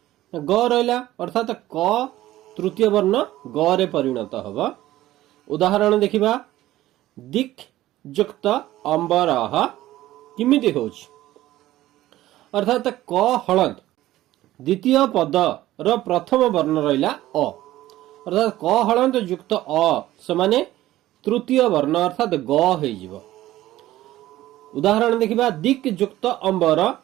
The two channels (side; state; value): left; quieter; 15.2 dB